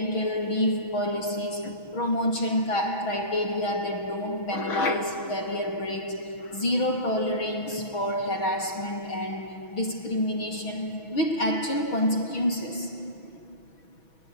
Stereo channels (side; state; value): right; late; 6.1 ms